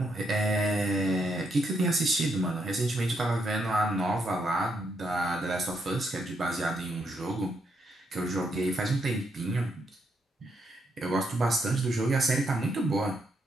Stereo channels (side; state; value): both; normal; correlation 0.78